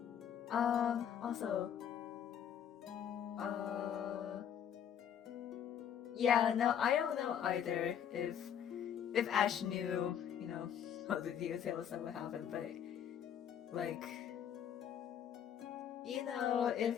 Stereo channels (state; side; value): quieter; right; 9.0 dB